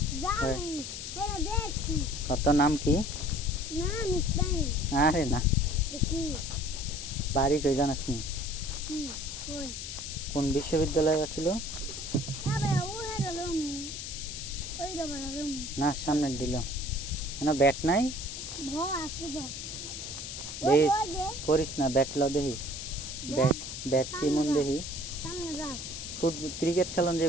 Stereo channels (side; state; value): left; noise; hiss, 7 dB below the sound